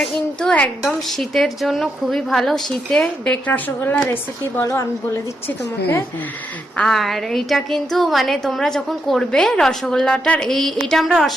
কিন্তু একদম শীতের জন্য খুবই ভালো। শীতে বেক রসগোল্লা রেসিপি বলো, আমি বলে দিচ্ছি তোমাকে। আর এইটা কিন্তু মানে তোমরা যখন করবে রসগোল্লাটার, এইটা আমরা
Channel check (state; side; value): normal; both; correlation 0.82